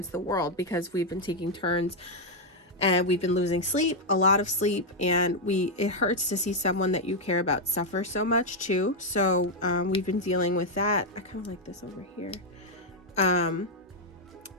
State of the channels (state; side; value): normal; both; correlation 0.00